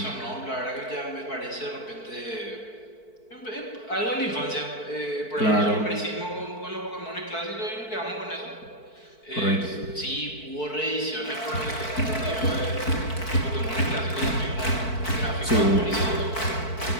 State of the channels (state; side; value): late; right; 4.5 ms